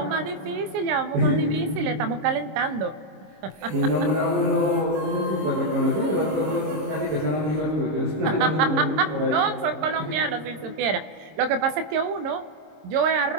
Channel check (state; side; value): late; left; 26 ms